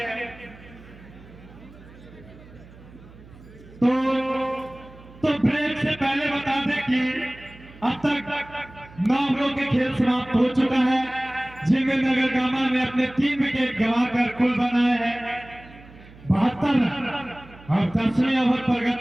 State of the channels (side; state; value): right; noise; hum, 21 dB below the sound